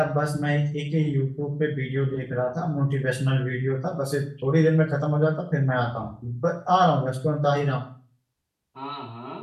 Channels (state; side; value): identical; both; correlation 1.00